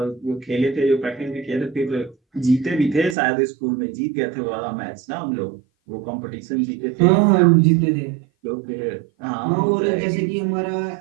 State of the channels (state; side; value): drops out; left; at 3.2 s